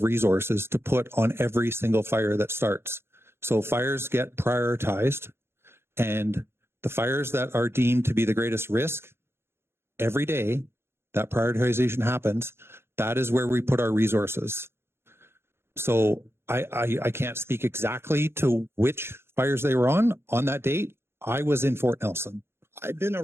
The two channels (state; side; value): late; left; 0.12 ms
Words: resources to put on every single fire that starts. So fires get prioritized, and the fires that are deemed to be the greatest risk, every day that prioritization happens, that is where we put our resources. So I can't speak exactly to which fires they were on that date. I was in Fort Nelson I've